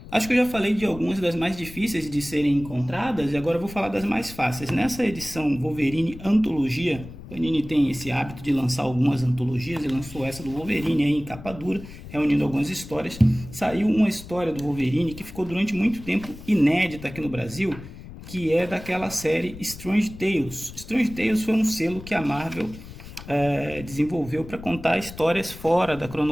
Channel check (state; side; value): noise; left; rumble, 15 dB below the sound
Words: Acho que eu já falei de algumas das mais difíceis de serem encontradas e agora eu vou falar das mais fáceis. Nessa edição Wolverine Antologia, Panini tem esse hábito de lançar algumas antologias e lançou essa do Wolverine aí em capa dura, reunindo algumas histórias. Saiu uma história do Wolverine que ficou durante muito tempo inédita aqui no Brasil, que é daquela série Strange Tales. Strange Tales foi um selo que a Marvel desenvolveu para contar histórias fora da